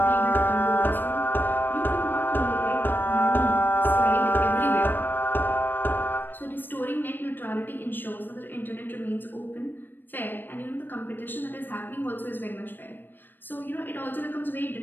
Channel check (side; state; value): right; late; 0.094 ms